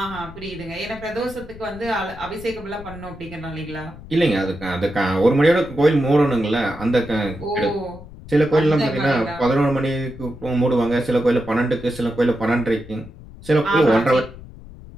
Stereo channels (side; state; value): left; noise; rumble, 16 dB below the sound